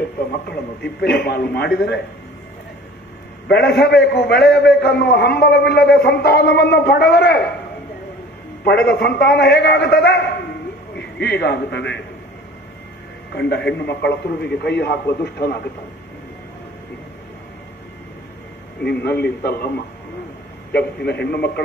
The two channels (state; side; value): normal; both; correlation 0.46